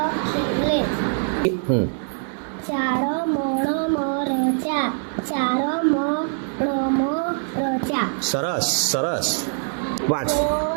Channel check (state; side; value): silent; left; 63 dB below the other